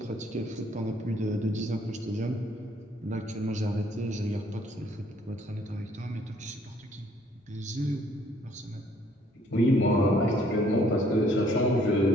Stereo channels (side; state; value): both; normal; correlation 0.63